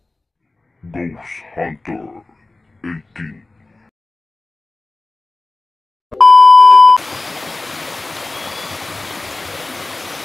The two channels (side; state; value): right; quieter; 3.1 dB